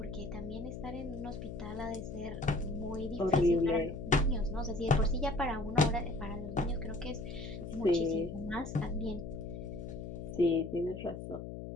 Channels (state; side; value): noise; left; hum, 8 dB below the sound